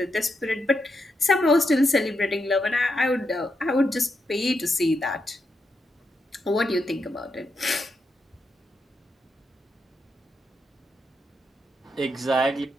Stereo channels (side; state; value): both; normal; correlation 0.83